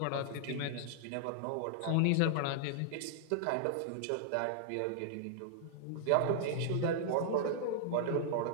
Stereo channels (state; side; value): different; both; correlation -0.01